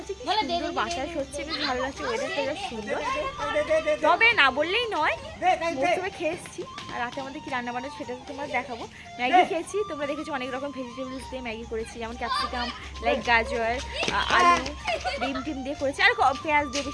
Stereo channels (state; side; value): identical; both; correlation 1.00